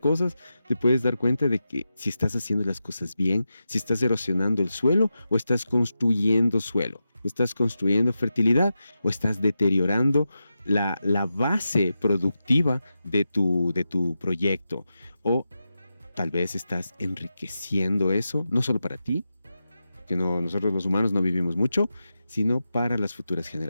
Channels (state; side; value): inverted; both; correlation -0.90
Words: te puedes dar cuenta de que si estás haciendo las cosas bien, si estás erosionando el suelo o estás construyendo suelo. ¿Estás construyendo fertilidad o estás deteriorando la base productiva de tu proyecto? O tal vez estás enriqueciendo eso, no solo para ti, que nosotros los humanos no vivimos mucho, sino para las futuras